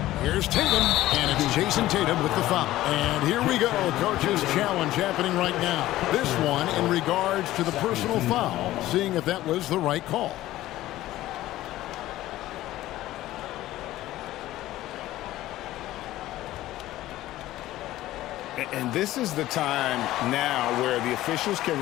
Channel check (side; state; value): right; quieter; 15.4 dB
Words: Here's Tatum, and it's Jason Tatum with the foul. And here we go, coach's challenge happening right now. This one in regards to the personal foul, seeing if that was the right call. And this is the time now where the officials can